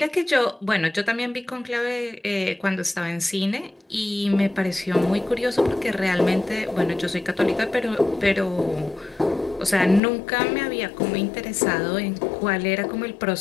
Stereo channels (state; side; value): drops out; right; at 10.0 s